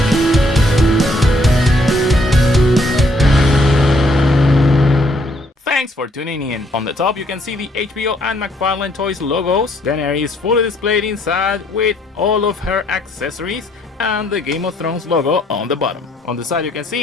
Thanks for tuning in. On the top you can see the HBO and McFarlane Toys logos. Daenerys is fully displayed inside with all of her accessories and the Game of Thrones logo on the bottom. On the side you can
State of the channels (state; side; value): normal; both; correlation 0.68